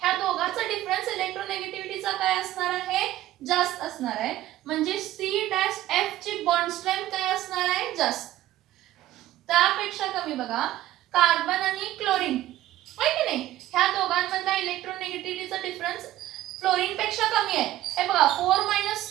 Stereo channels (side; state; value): left; quieter; 14.5 dB